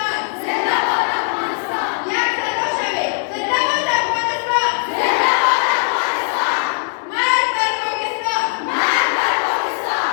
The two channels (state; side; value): silent; right; 67 dB below the other